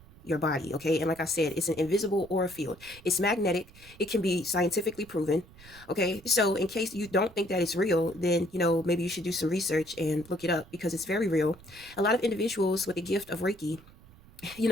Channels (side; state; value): right; noise; rumble, 23 dB below the sound